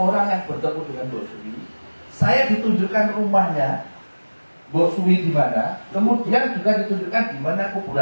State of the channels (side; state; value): both; inverted; correlation -1.00